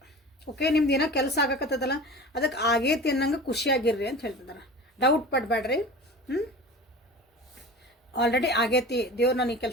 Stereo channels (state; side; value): normal; both; correlation 0.35